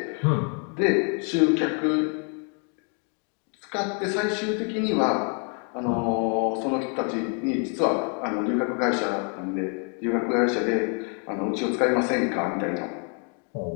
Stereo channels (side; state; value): right; quieter; 39.9 dB